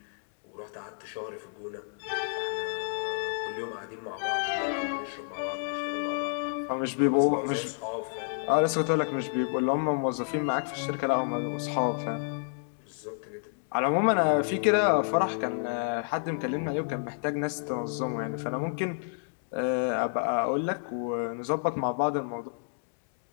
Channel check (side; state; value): right; silent; digital silence